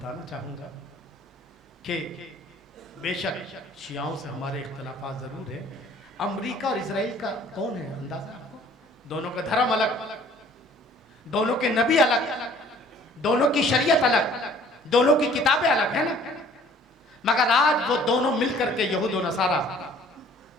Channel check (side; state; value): both; normal; correlation 0.54